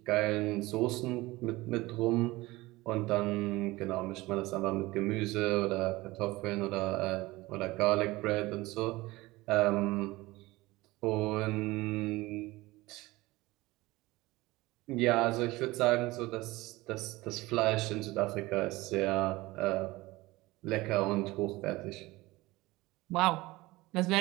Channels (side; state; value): left; quieter; 20.2 dB